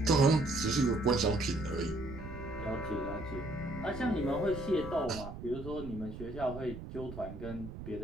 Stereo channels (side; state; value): right; noise; rumble, 11 dB below the sound